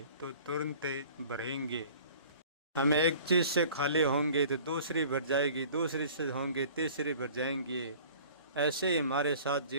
तो तुरंत भरेंगे। हम एक चीज़ से खाली होंगे तो दूसरी भर जाएगी, दूसरी से होंगे तीसरी भर जाएंगी। ऐसे ही हमारे साथ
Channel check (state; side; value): inverted; both; correlation -0.47